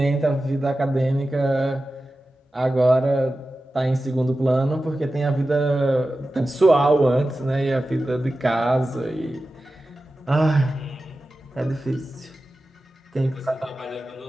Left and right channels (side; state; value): both; normal; correlation 0.94